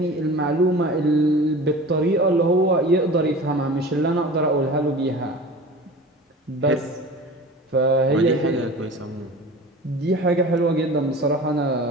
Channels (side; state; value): both; normal; correlation 0.38